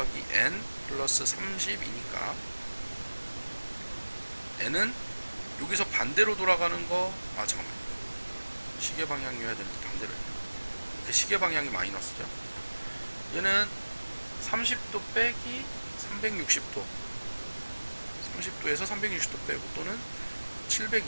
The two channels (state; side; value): inverted; both; correlation -1.00